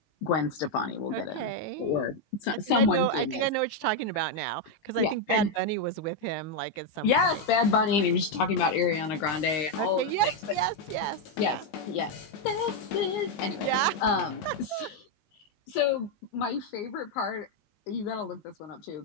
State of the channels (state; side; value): late; right; 19 ms